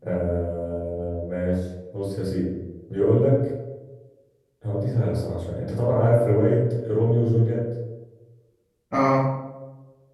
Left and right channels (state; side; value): identical; both; correlation 1.00